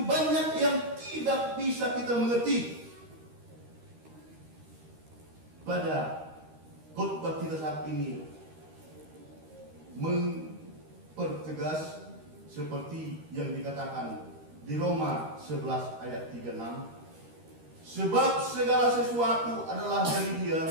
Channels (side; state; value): left; late; 13 ms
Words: banyak yang tidak bisa kita mengerti, pada khotbah kita saat ini mempertegas seperti yang dikatakan di Roma 11 ayat 36, sebab segala sesuatu adalah dari